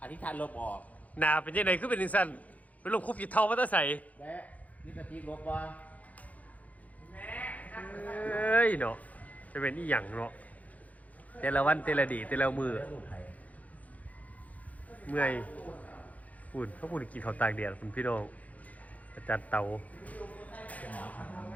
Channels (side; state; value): right; late; 0.073 ms